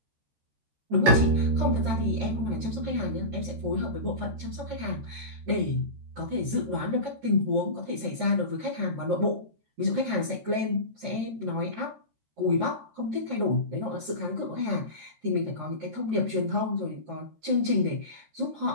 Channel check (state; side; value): late; left; 13 ms